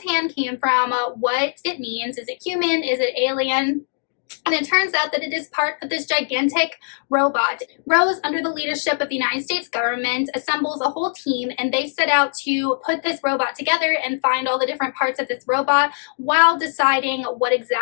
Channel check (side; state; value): right; silent; digital silence